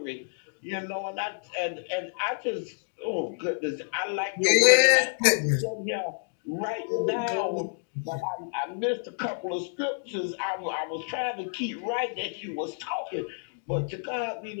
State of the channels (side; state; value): right; silent; digital silence